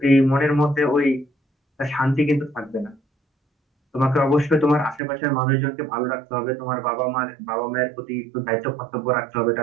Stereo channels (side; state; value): left; drops out; at 5.0 s